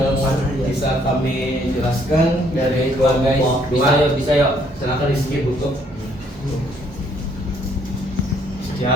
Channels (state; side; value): normal; both; correlation 0.66